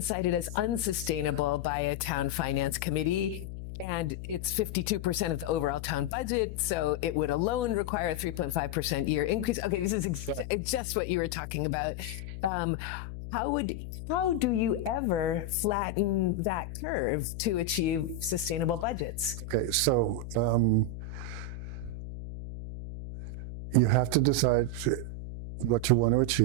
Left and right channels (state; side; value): noise; left; hum, 9 dB below the sound